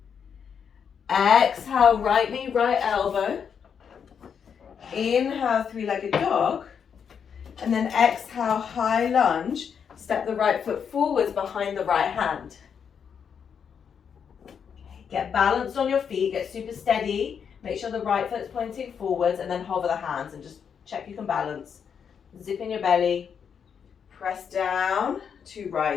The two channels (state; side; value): quieter; right; 7.2 dB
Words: Exhale, right knee, right elbow. Inhale, three-legged dog. And then exhale, high lunge. Step the right foot forwards behind the right hand. Get balanced on your feet, get super steady. Make sure the right foot's pointing forwards and then hover the hands and just check you can balance. Zip in your belly, press down to